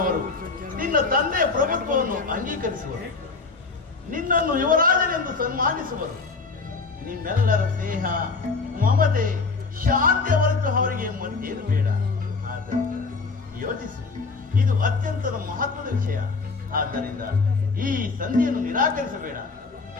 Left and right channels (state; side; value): quieter; right; 4.2 dB